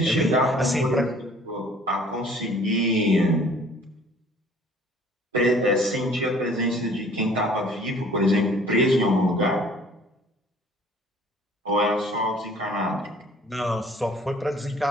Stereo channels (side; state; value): both; normal; correlation 0.53